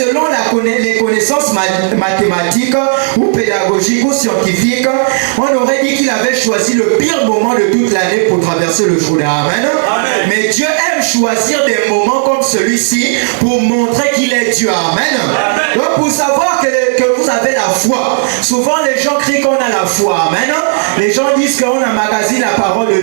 les connaissances mathématiques ou pédagogiques ou scientifiques, on aurait dit qu'il avait choisi le pire moment de toute l'année pour traverser le Jourdain. Amen. Mais Dieu aime choisir des moments comme celui-ci pour montrer qu'il est Dieu. Amen. Donc pour savoir que vous avez la foi, souvent les gens crient qu'on a la foi. Amen. Les gens disent qu'on emmagasine la parole de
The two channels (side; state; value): left; silent; digital silence